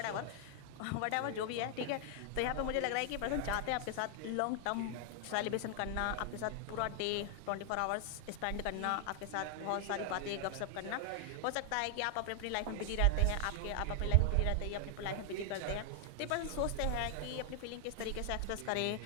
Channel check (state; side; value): different; both; correlation 0.00